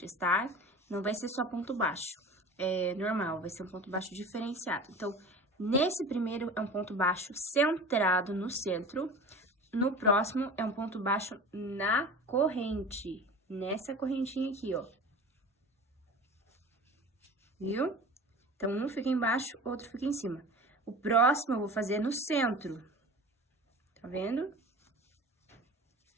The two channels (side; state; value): both; normal; correlation 0.36